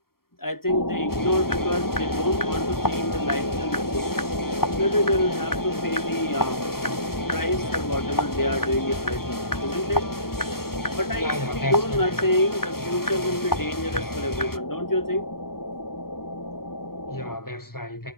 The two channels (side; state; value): right; late; 0.93 ms